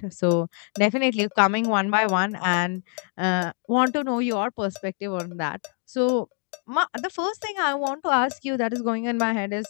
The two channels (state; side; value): quieter; right; 39.2 dB